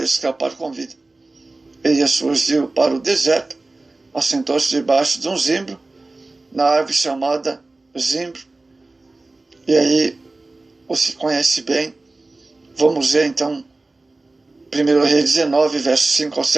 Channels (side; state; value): left; quieter; 3.2 dB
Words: escapar com vida. Elias fugiu para o deserto, assentou-se debaixo de um zimbro, na árvore chamada zimbro. E aí, o se conhece bem. Vamos ver então 1 Reis 19, versos 5 ao